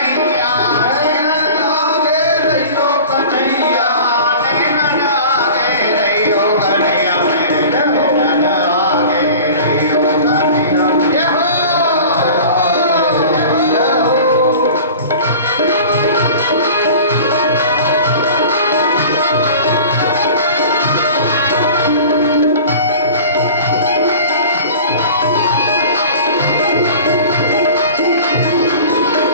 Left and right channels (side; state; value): both; inverted; correlation -0.40